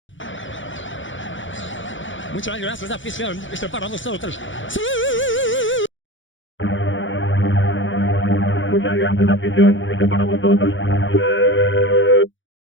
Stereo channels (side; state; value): right; late; 0.56 ms